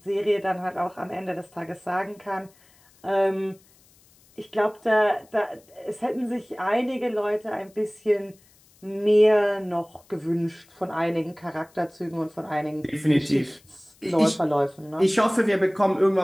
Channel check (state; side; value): noise; left; hiss, 30 dB below the sound